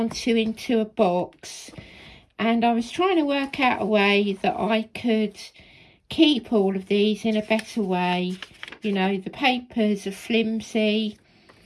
to into a box, and I was trying to work out a way that I could keep all of these in a better way. You know, the papers are flimsy.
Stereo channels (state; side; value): identical; both; correlation 1.00